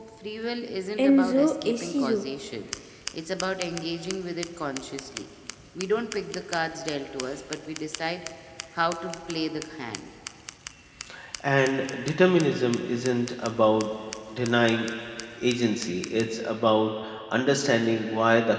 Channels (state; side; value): identical; both; correlation 1.00